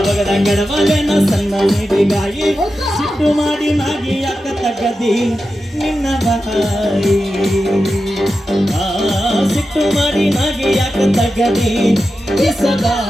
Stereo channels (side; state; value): both; normal; correlation 0.91